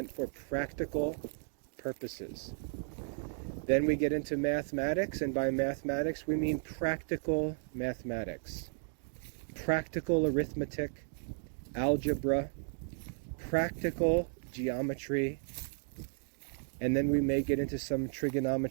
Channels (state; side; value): silent; left; 55 dB below the other